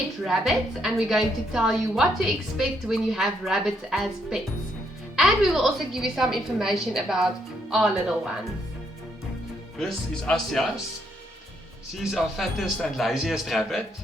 rabbits, and we're going to tell you what to expect when you have rabbits as pets. And we will also give you some information about our little ones. This is Asjas. She's our fattest and laziest rabbit,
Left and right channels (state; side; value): normal; both; correlation 0.74